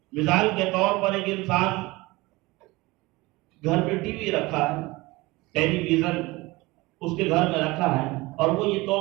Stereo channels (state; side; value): quieter; left; 21.9 dB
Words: مثال کے طور پر ایک انسان گھر میں ٹی وی رکھا ہے، ٹیلی ویژن اس کے گھر میں رکھا ہے، اور وہ یہ